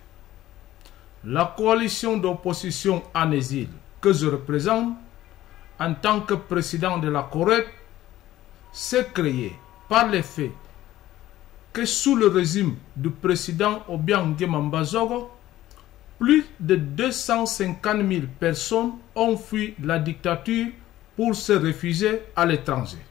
La coalition d'opposition en exil que je représente en tant que président de la Corée s'est créée par le fait que sous le régime du président Obiang Nguema Mbazogo, plus de 250 000 personnes ont fui la dictature pour se réfugier à l'étranger.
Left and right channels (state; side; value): quieter; right; 14.6 dB